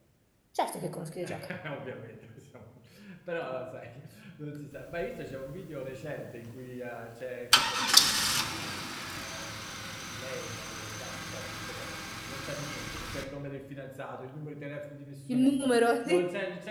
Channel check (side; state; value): both; identical; correlation 1.00